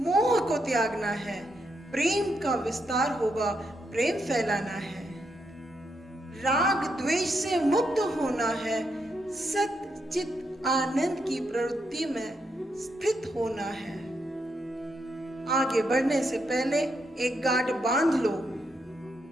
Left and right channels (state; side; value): normal; both; correlation 0.80